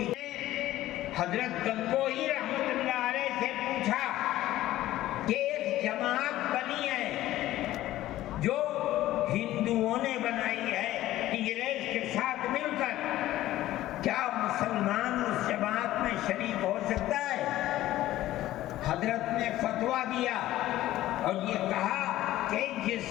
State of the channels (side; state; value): right; quieter; 14.9 dB